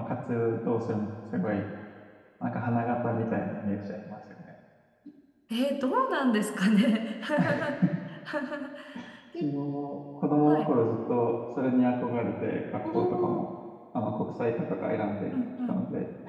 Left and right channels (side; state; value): both; identical; correlation 1.00